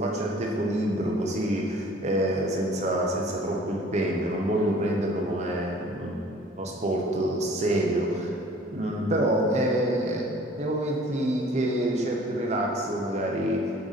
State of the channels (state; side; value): normal; both; correlation 0.51